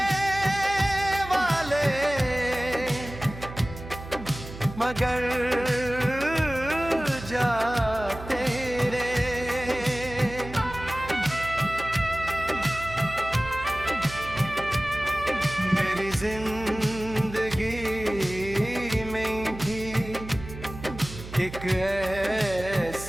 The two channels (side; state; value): right; noise; hum, 12 dB below the sound